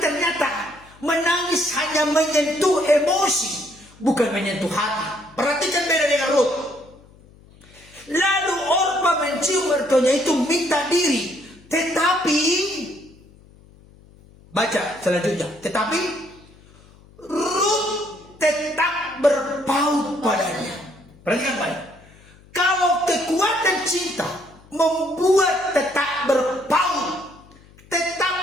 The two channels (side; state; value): left; noise; hum, 25 dB below the sound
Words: menangis hanya menyentuh emosi, bukan menyentuh hati. Perhatikan beda dengan Ruth. Lalu Orpa mencium mertuanya itu, minta diri. Tetapi, baca selanjutnya. Tetapi Ruth tetap berpaut padanya. Perhatikan baik. Kalau kekuatan cinta membuat tetap berpaut,